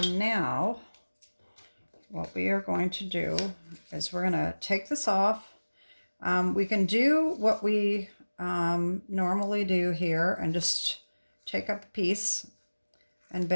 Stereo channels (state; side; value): inverted; both; correlation -1.00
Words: now what we are going to do is we're going to take this off. We can do what we normally do here and just take up a piece and